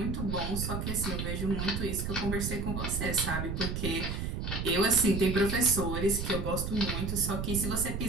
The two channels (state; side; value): noise; right; rumble, 3 dB below the sound